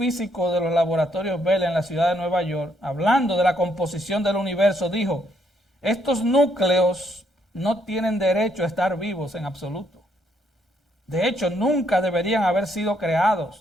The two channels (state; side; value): normal; both; correlation 0.73